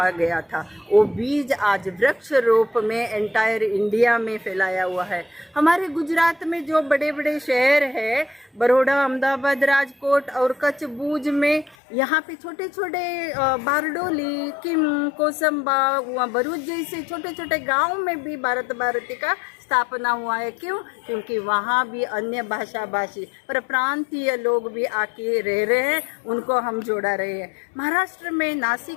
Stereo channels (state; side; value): drops out; right; at 11.8 s